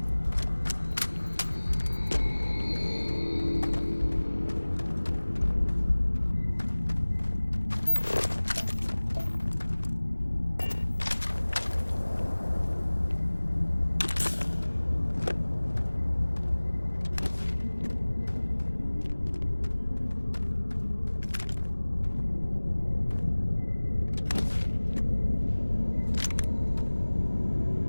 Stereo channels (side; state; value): both; inverted; correlation -1.00